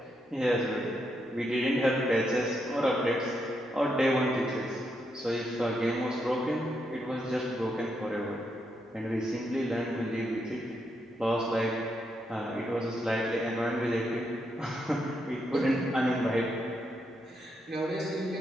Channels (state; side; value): normal; both; correlation 0.80